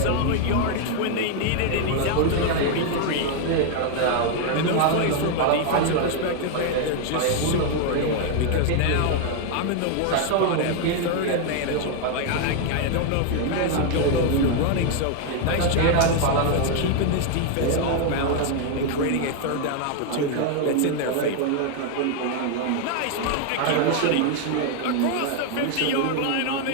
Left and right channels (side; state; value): both; different; correlation 0.00